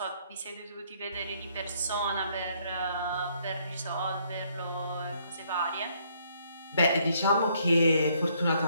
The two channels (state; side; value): inverted; both; correlation -0.68